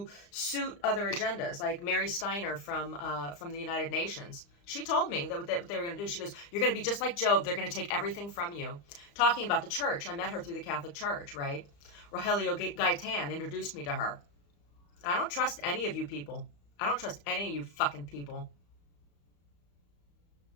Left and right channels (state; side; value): late; right; 35 ms